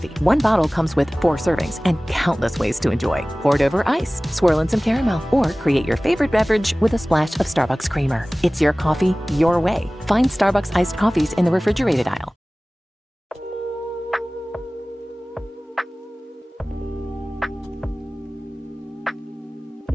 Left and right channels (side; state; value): both; normal; correlation 0.98